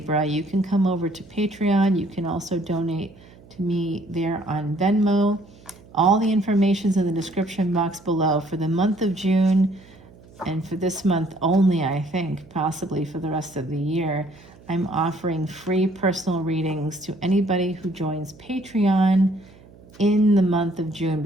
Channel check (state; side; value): noise; right; hum, 24 dB below the sound